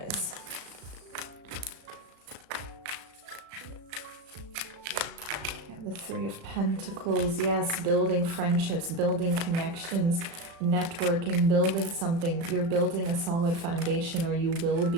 The 3 of Pentacles, yes, building friendships, building connections, networking, building something. You're building a solid foundation, or you will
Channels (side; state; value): left; late; 36 ms